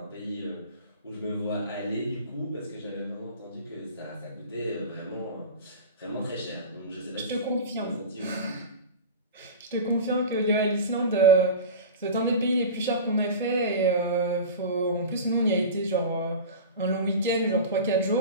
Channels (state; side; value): inverted; both; correlation -0.31